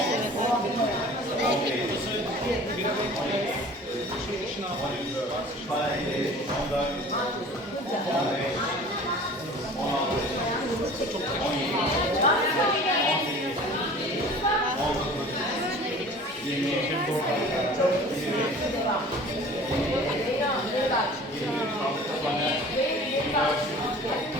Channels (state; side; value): normal; both; correlation 0.44